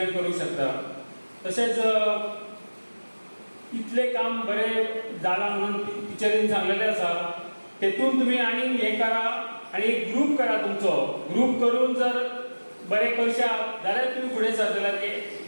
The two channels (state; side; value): inverted; both; correlation -1.00